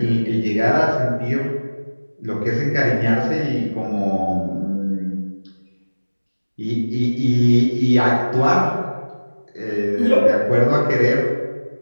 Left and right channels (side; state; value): both; inverted; correlation -1.00